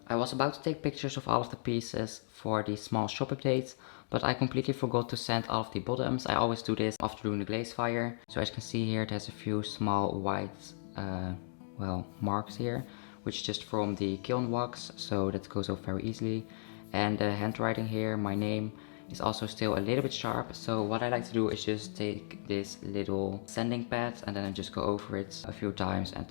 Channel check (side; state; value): right; silent; digital silence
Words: I was about to take pictures of all of the pieces for the small shop updates, but I completely forgot to sand all of the bottoms. I always do this after doing the glaze fire. So as you can see here, there's a few small white, marks here, which is just from the kiln wax, so that goes off very easily. And the handwriting here, my name, is also still a little bit sharp. So what I like to do is just take this little sanding pad and then I just go over it a few times and